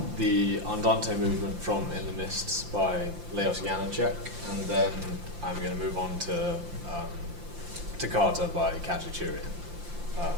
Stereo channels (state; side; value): late; left; 5.8 ms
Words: the Andante movement from In the Mists by Leos Janáček, and then I'm going to move on to Toccata by Khachaturian.